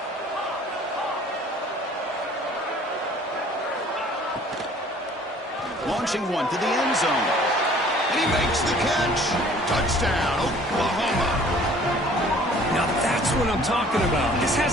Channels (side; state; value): both; normal; correlation 0.53